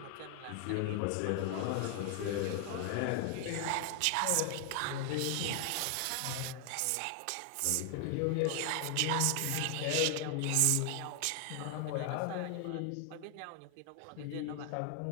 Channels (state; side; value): different; both; correlation 0.00